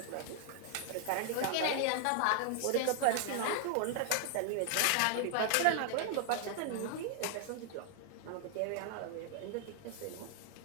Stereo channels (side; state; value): both; different; correlation 0.00